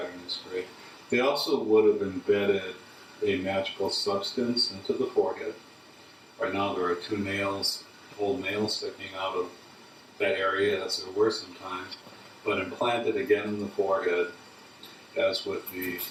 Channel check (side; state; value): both; identical; correlation 1.00